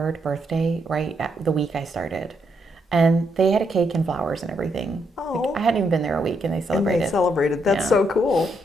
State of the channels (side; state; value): both; normal; correlation 0.77